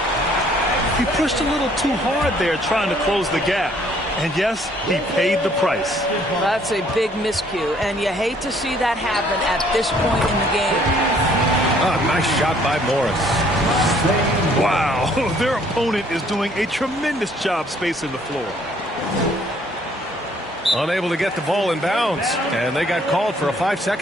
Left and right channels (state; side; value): normal; both; correlation 0.62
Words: He pushed a little too hard there trying to close the gap. And yes, he paid the price. That's a big miscue, and you hate to see that happen at this point in the game. Nice shot by Morris. Wow, their opponent is doing a tremendous job spacing the floor. Unable to get the ball in bounds, and they got called for a